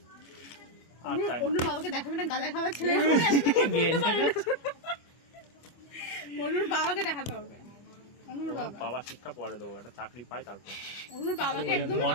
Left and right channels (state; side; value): late; right; 25 ms